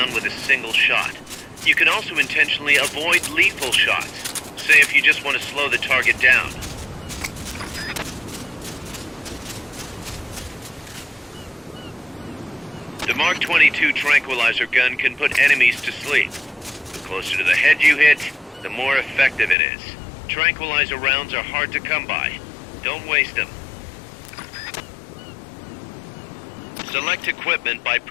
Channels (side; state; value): right; drops out; at 19.6 s